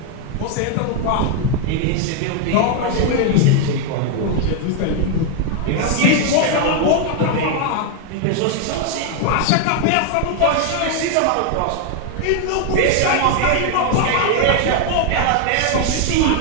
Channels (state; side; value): different; both; correlation 0.00